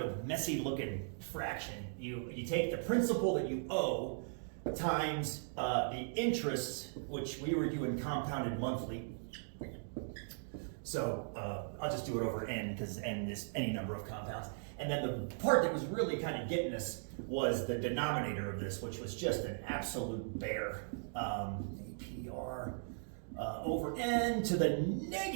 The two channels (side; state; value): left; silent; digital silence